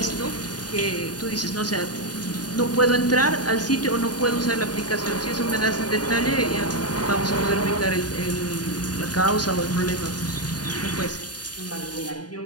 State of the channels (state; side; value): late; right; 0.69 ms